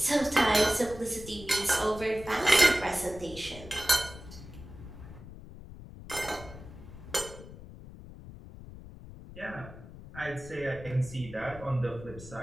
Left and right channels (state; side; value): noise; left; rumble, 15 dB below the sound